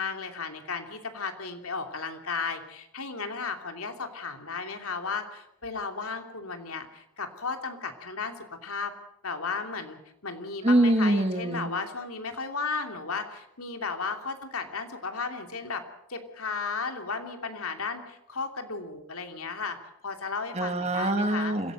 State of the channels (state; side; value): normal; both; correlation 0.39